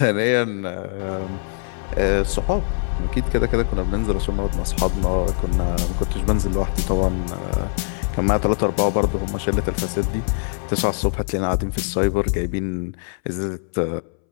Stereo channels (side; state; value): right; silent; 64 dB below the other